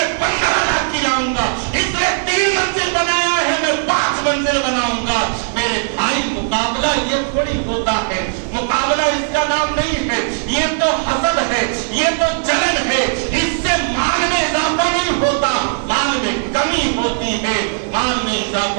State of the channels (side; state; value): left; silent; 58 dB below the other